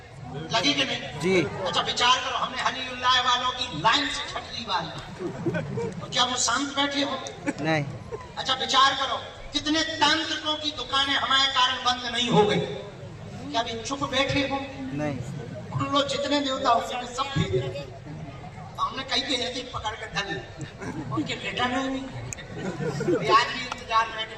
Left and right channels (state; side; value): identical; both; correlation 1.00